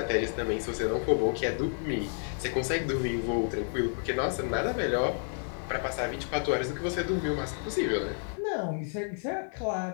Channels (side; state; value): right; silent; 57 dB below the other